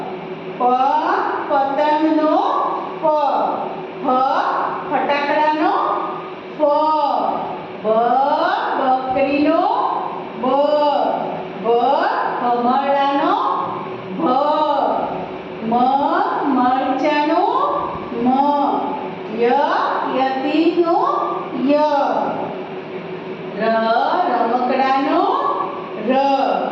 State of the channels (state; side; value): identical; both; correlation 1.00